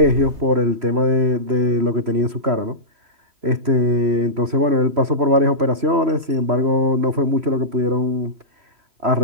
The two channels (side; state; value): left; late; 3.0 ms